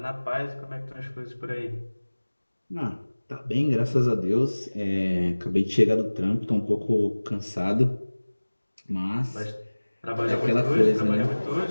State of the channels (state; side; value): inverted; both; correlation -1.00